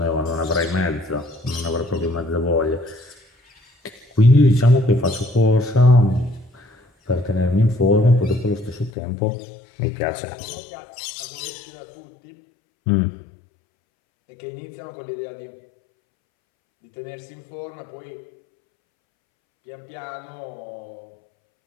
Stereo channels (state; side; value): drops out; right; at 8.9 s